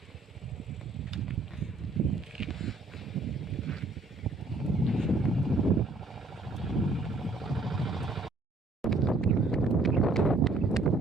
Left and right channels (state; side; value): quieter; left; 3.3 dB